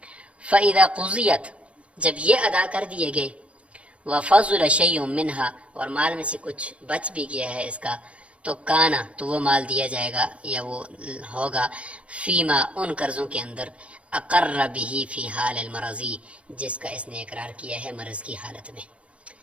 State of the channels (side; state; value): left; late; 0.062 ms